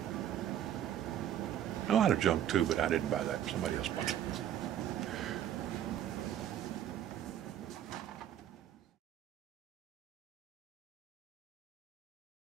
A lot of junk too, but I didn't buy that. Somebody else bought it.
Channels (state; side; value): quieter; left; 10.7 dB